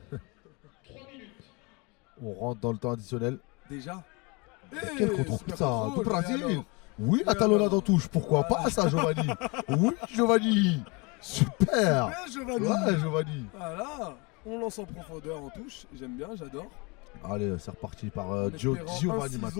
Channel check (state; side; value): quieter; right; 28.7 dB